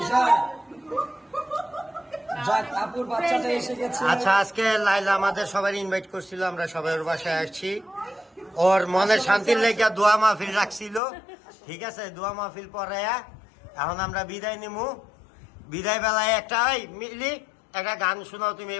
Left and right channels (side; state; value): right; drops out; at 11.0 s